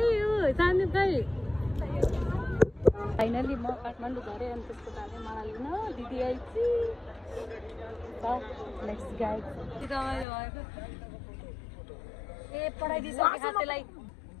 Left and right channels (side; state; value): right; drops out; at 10.2 s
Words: हो सानो खै फाइनली म काठमाडौँ झरेँ अनि त्यसको बारे मलाई लिन दिदी आइछि नेक्स्ट गाइड रमाइलो भएको ए पढाइदिइसके खातेलाई